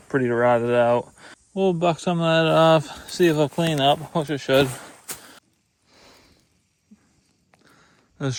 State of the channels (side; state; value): both; identical; correlation 1.00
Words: pretty rotted out. We'll buck some of that off, see if it'll clean up, which it should. This